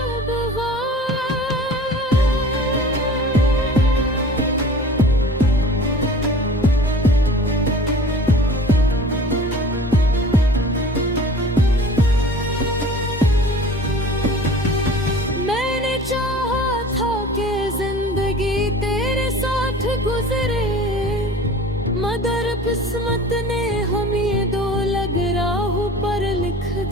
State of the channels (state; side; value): normal; both; correlation 0.43